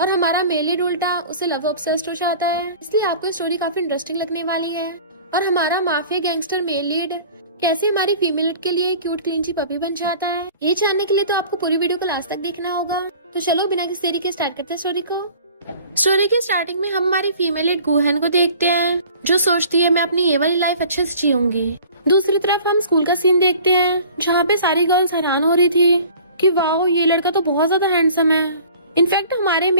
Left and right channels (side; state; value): both; inverted; correlation -0.47